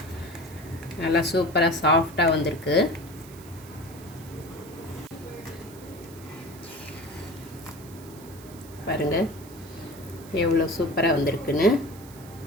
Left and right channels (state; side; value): noise; right; hiss, 20 dB below the sound